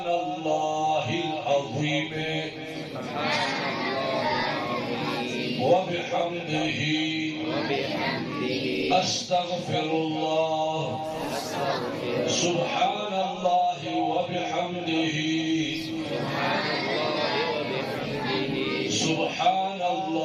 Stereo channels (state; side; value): identical; both; correlation 1.00